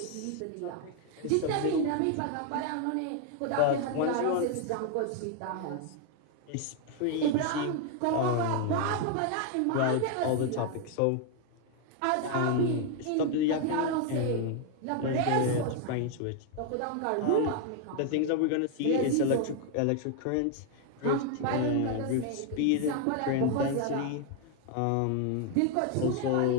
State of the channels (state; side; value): different; both; correlation 0.00